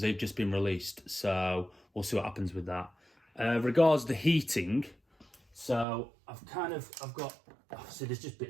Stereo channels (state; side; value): drops out; left; at 5.9 s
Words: they've just been released. So we'll see what happens with that. Regards the heating, so I've got, see there's just